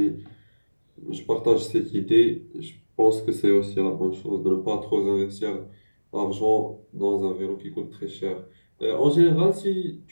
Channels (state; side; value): inverted; both; correlation -1.00